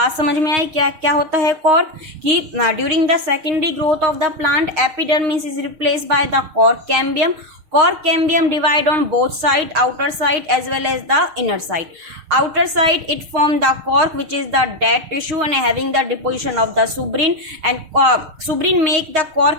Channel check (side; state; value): left; late; 6.5 ms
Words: समझ में आई क्या क्या होता है कॉर्क, कि during the secondary growth of the plant epidermis is replaced by the cork cambium. Cork cambium divide on both side, outer side as well as the inner side. Outer side it form the cork, which is the dead tissue and having the deposition of the suberin, and suberin make the